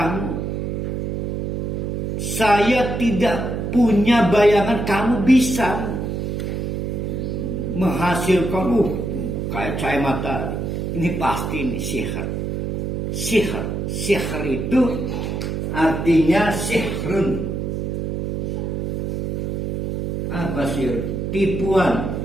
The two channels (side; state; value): right; noise; hum, 2 dB below the sound